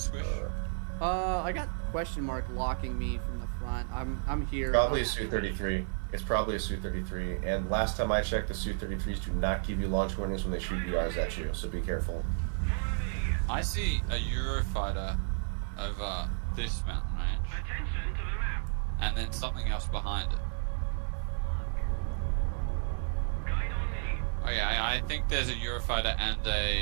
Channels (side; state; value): left; silent; 56 dB below the other